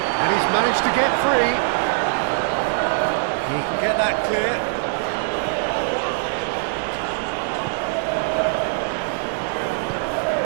And he's managed to get free. He can get that clear.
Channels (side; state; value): left; silent; 64 dB below the other